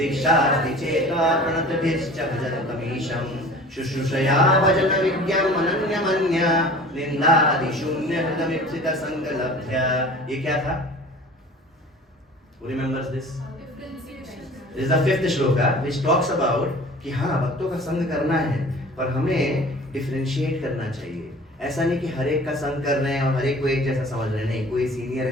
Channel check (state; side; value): normal; both; correlation 0.44